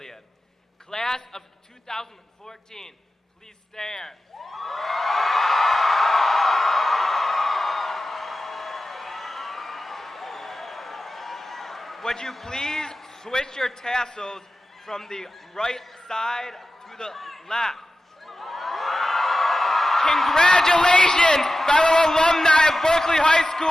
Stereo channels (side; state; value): both; normal; correlation 0.94